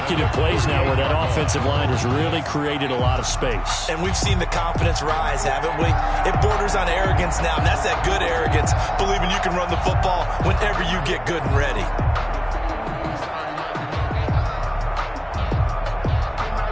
plays now where that offensive line has really created a lot of space. And we've seen the confidence rise, haven't we? It borders on arrogance now, and that's that good arrogance, believing you can run the football whenever you get good and ready.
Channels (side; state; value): both; identical; correlation 1.00